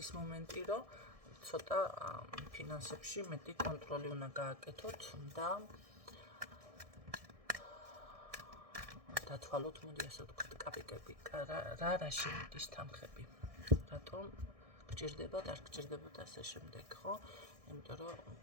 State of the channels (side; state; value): left; late; 1.6 ms